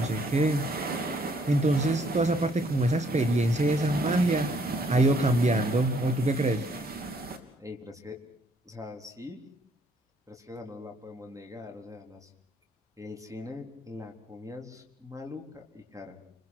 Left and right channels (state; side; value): normal; both; correlation 0.67